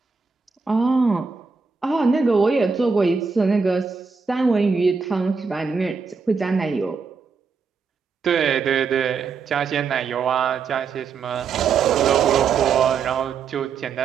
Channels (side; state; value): left; quieter; 5.3 dB